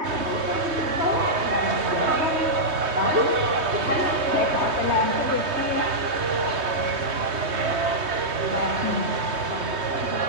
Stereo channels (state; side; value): late; left; 3.2 ms